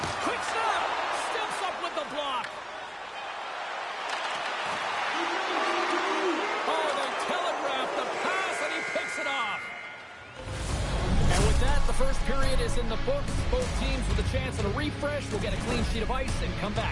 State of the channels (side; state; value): both; identical; correlation 1.00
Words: Quick snap! Steps up with the block. Oh, they telegraph the pass, and he picks it off. And with that, the first period is in the books. Both teams with a chance at a refresh will get a clean sheet of ice and come